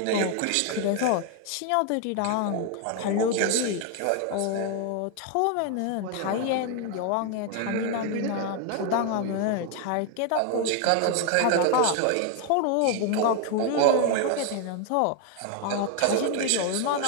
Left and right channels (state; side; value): different; both; correlation 0.01